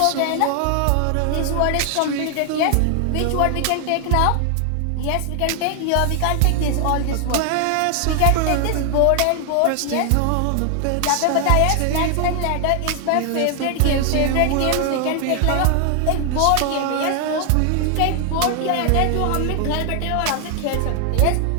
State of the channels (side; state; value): both; different; correlation 0.00